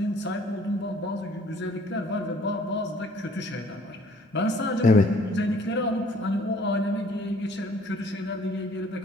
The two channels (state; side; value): normal; both; correlation 0.58